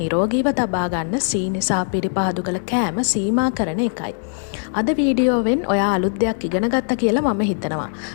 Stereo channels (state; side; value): silent; right; 63 dB below the other